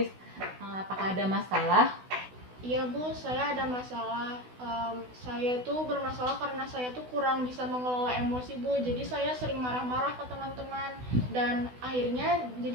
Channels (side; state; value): left; late; 16 ms